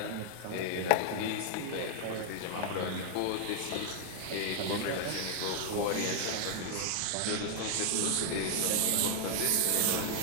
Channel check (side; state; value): both; different; correlation 0.00